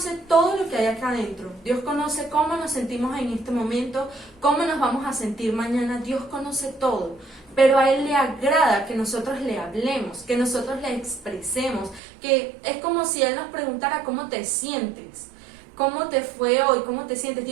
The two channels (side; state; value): left; drops out; at 12.0 s